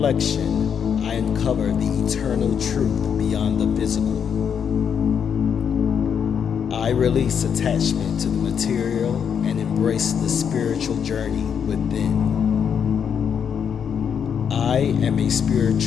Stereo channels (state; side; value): quieter; right; 7.5 dB